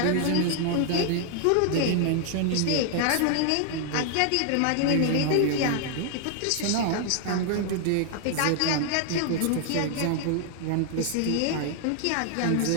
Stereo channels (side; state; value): both; different; correlation 0.00